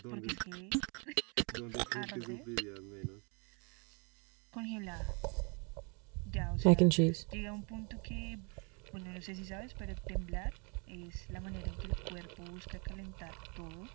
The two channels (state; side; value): quieter; left; 33.7 dB